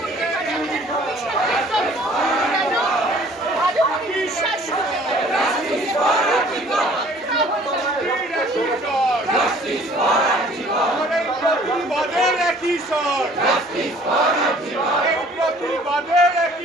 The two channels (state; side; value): normal; both; correlation 0.54